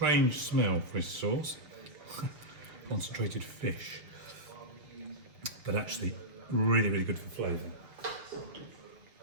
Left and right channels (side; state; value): left; late; 6.5 ms